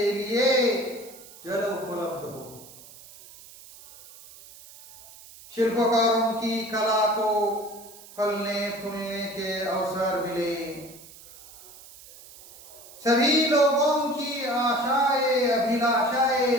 लिए जल उपलब्ध हो। शिल्पकारों की कला को फलने फूलने के अवसर मिले। सभी लोगों की आशाएं अभिलाषाएं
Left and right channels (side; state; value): right; noise; hiss, 20 dB below the sound